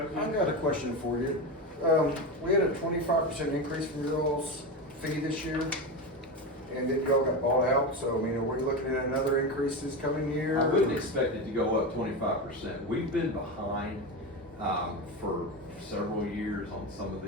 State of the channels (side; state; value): both; normal; correlation 0.19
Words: I got a question for you. We had a 25% increase from your all's fee this year, and then y'all got bought out, so, I mean, are we looking at another increase this coming year? I wouldn't expect it to go up 25%. We've been behind for several years on some of